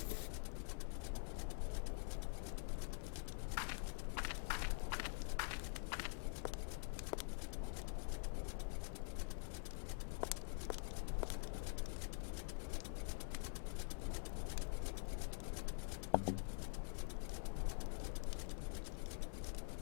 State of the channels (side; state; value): right; silent; digital silence